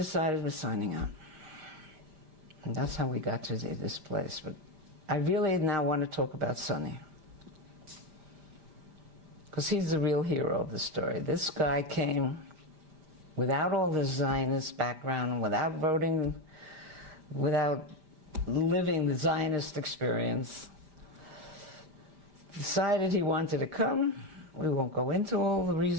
we're signing up. And that's how we got to this place. But I really now want to talk about Sonny, because he's the real hero of the story. This guy came without all the Zionist background, without voting, without living the Zionist experience. Decided he wanted to come. We won't go into all the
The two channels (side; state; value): left; late; 5.1 ms